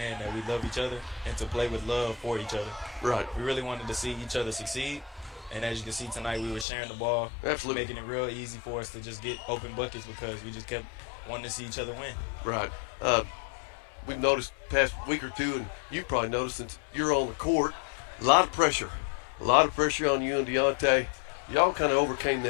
that we love each other and to play with love for each other. Right. We really wanted to see each other succeed. And as you can see tonight, we were sharing the ball, Absolutely, making it real easy for us to just get open buckets because we just kept wanting to see each other win. Right. We've noticed past week or two, and you've probably noticed since you're on the court, a lot of pressure on you and Deontay. Y'all kind of overcame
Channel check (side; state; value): right; drops out; at 6.7 s